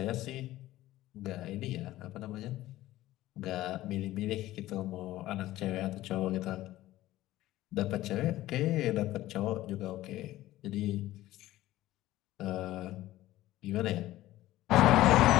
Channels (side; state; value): right; quieter; 15.6 dB